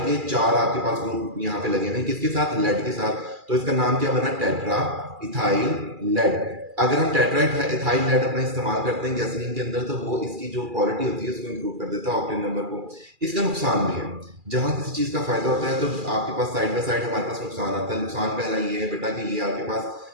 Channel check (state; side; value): late; left; 2.4 ms